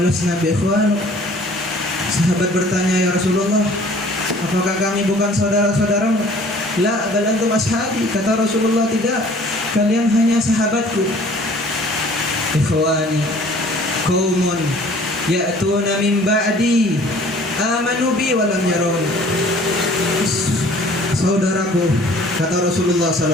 bi ikhwanuk?" Sahabat bertanya, "Ya Rasulullah, apakah kami bukan saudara-saudaramu?" "La, bal antum ashabi." Kata Rasulullah, "Tidak, kalian hanya sahabatku." "Ikhwani qaumun ya'tuna min ba'di amanu bi wa lam yarawun." Saudaraku, kata Rasulullah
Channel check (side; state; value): both; normal; correlation 0.52